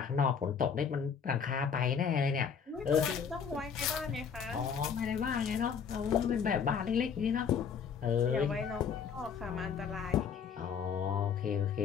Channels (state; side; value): quieter; right; 6.8 dB